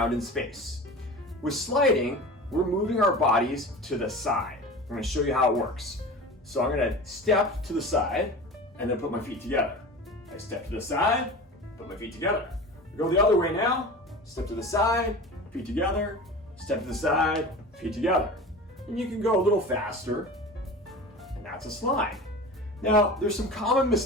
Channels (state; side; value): normal; both; correlation 0.34